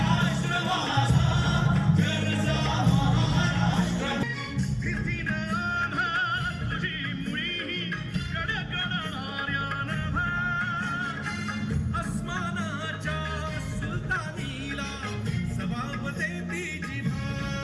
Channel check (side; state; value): both; identical; correlation 1.00